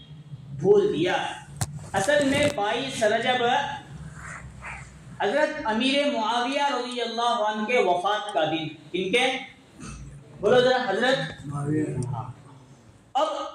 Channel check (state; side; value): identical; both; correlation 1.00